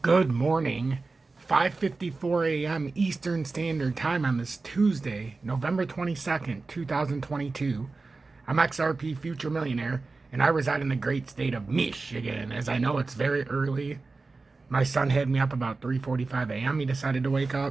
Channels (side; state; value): left; quieter; 3.8 dB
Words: Good morning, 5:54 a.m. Eastern Standard Time on this Tuesday, November 22nd, 2022. I'm XRP Future Millionaire, and I reside in the great state of Michigan. As I know, it's very early. My son had me up about 3:45 a.m. He decided to wake